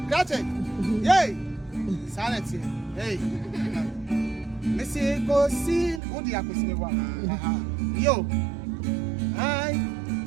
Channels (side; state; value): left; drops out; at 6.0 s